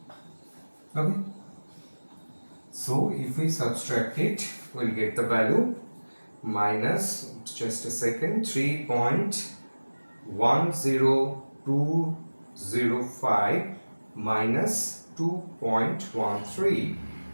Okay. So if we subtract it, we'll get the value minus, just a second, 3.10205 minus 2.13,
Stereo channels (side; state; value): both; inverted; correlation -1.00